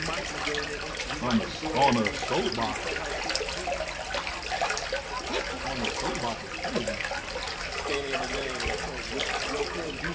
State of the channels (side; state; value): both; identical; correlation 1.00